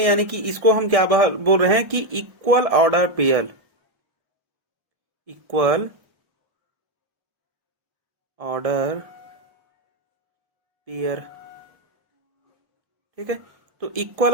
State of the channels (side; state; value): left; late; 1.2 ms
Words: यानी कि इसको हम क्या बोल रहे हैं कि equal order pair, equal order pair. ठीक है, तो